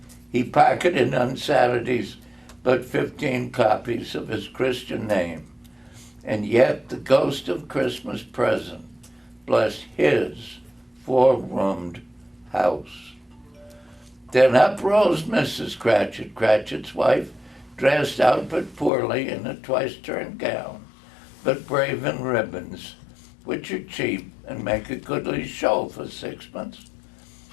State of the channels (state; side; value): drops out; right; at 18.9 s